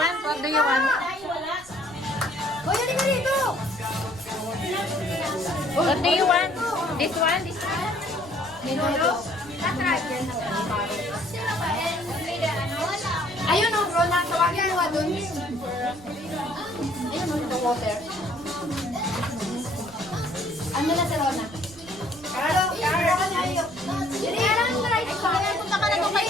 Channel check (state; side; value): noise; right; rumble, 21 dB below the sound